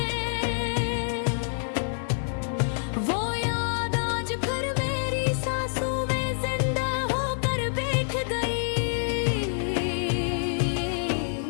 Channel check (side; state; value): right; silent; digital silence